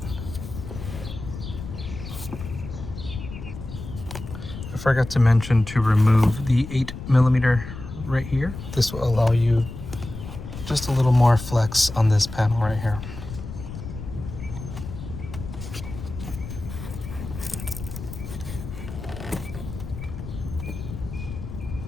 I forgot to mention to remove the 8mm right here. This will allow you just a little more flex on this panel right here.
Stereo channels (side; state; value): left; noise; rumble, 10 dB below the sound